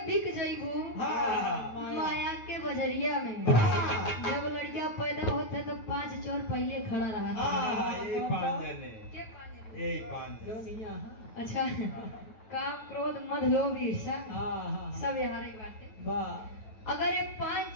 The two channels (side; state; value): right; late; 9.3 ms